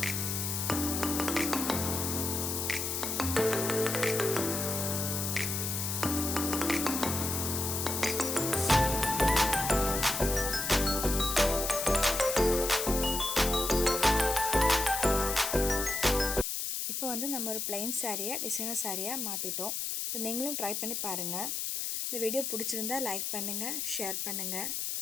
இப்போ நம்ம ஒரு plain சாரியை டிசைனர் சாரியாக மாற்றிட்டோம். நீங்களும் ட்ரை பண்ணி பாருங்கள். இந்த வீடியோ பிடிச்சிருந்தா லைக் பண்ணுங்கள், ஷேர் பண்ணுங்கள்.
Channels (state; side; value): noise; left; hiss, 2 dB below the sound